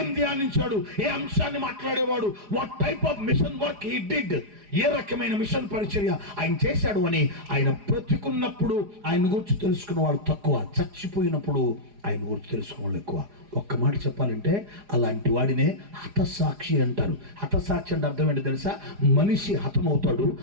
ధ్యానించాడు, ఏ అంశాన్ని మాట్లాడేవాడు, what type of mission work he did, ఏ రకమైన మిషన్ పరిచర్య ఆయన చేశాడు అని ఆయన బ్రతికున్నప్పుడు ఆయన గురించి తెలుసుకున్న వాళ్ళు తక్కువ, చచ్చిపోయినప్పుడు ఆయన గురించి తెలుసుకున్న వాళ్ళు ఎక్కువ. ఒక్క మాట చెప్పాలంటే అలాంటి వాడినే హతసాక్షి అంటారు. హతసాక్షి అంటే అర్థం ఏంటి తెలుసా? మనిషి హతమవుతాడు,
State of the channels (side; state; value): left; late; 4.9 ms